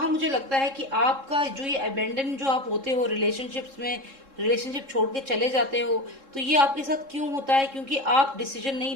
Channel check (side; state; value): left; late; 3.7 ms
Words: मुझे लगता है कि आपका जो ये अबेंडन जो आप होते हो रिलेशनशिप्स में, रिलेशनशिप छोड़ के चले जाते हो, तो ये आपके साथ क्यों होता है? क्योंकि आप डिसीजन नहीं